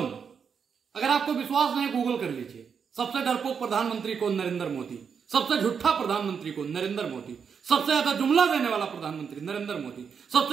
अगर आपको विश्वास नहीं गूगल कर लीजिए। सबसे डरपोक प्रधानमंत्री कौन? नरेंद्र मोदी। सबसे झूठा प्रधानमंत्री कौन? नरेंद्र मोदी। सबसे ज्यादा जुमला देने वाला प्रधानमंत्री नरेंद्र मोदी। सबसे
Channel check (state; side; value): quieter; left; 6.6 dB